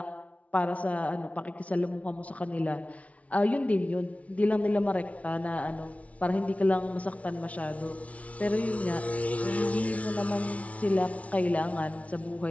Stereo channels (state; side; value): late; right; 0.065 ms